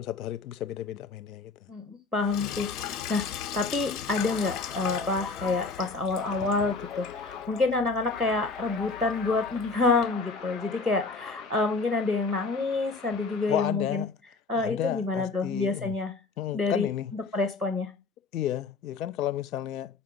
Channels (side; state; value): right; quieter; 4.1 dB